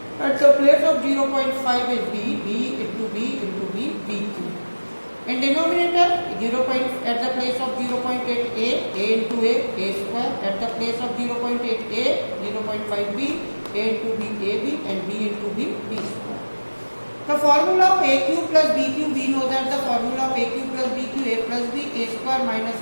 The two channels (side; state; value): both; inverted; correlation -1.00